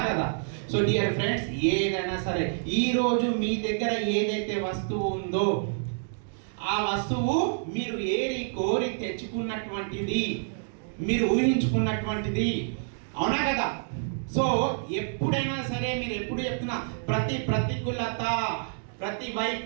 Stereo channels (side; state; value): left; silent; digital silence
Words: కదా? సో డియర్ ఫ్రెండ్స్, ఏదైనా సరే ఈ రోజు మీ దగ్గర ఏదైతే వస్తువు ఉందో ఆ వస్తువు మీరు ఏరి కోరి తెచ్చుకున్నటువంటిది, మీరు ఊహించుకున్నటువంటిది. అవునా కదా? సో ఎప్పుడైనా సరే మీరు ఎప్పుడు చెప్తున్నా, ప్రతి ప్రతికూలత, ప్రతి